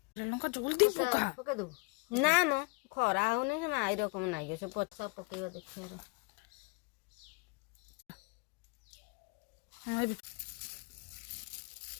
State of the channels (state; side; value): quieter; right; 28.5 dB